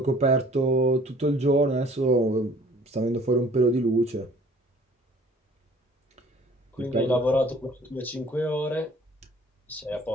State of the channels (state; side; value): normal; both; correlation 0.54